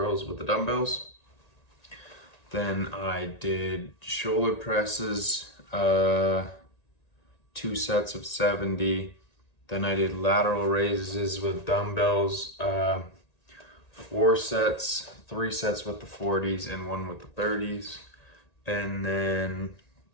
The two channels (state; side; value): late; right; 1.9 ms